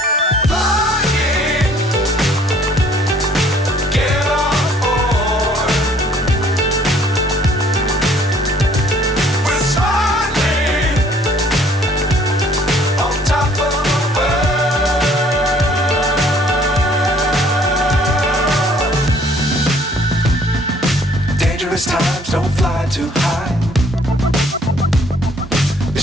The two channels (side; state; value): both; normal; correlation 0.59